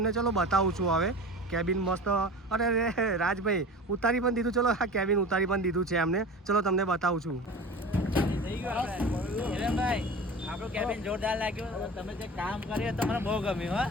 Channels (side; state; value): both; normal; correlation 0.35